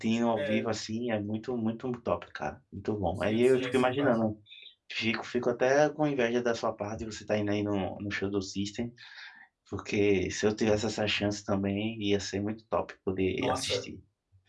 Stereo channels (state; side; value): identical; both; correlation 1.00